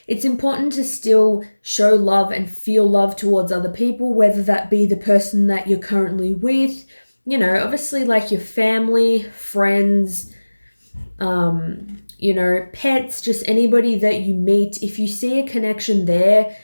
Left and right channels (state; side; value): inverted; both; correlation -1.00